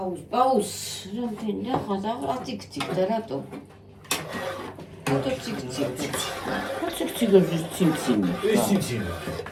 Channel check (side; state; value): both; identical; correlation 1.00